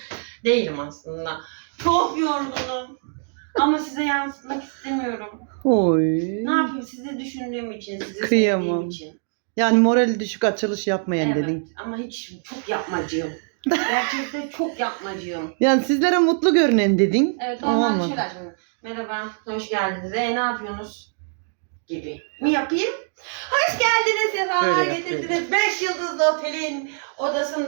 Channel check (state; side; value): silent; left; 61 dB below the other